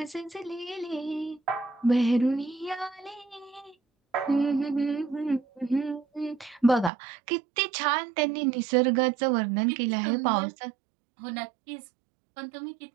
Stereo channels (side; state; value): left; drops out; at 6.9 s